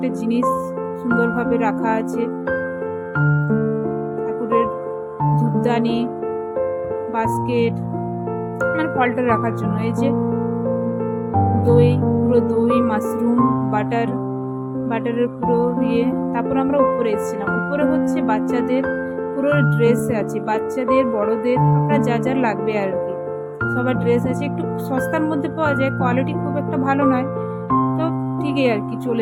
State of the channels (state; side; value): identical; both; correlation 1.00